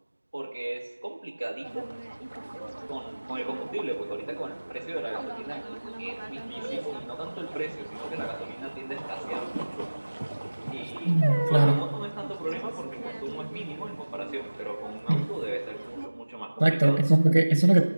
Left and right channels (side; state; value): both; inverted; correlation -1.00